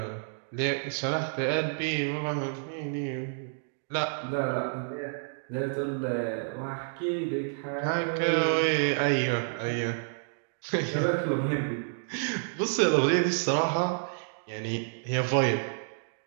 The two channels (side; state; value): left; silent; digital silence